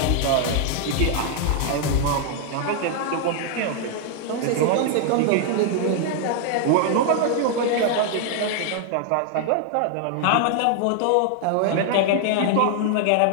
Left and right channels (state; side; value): different; both; correlation 0.00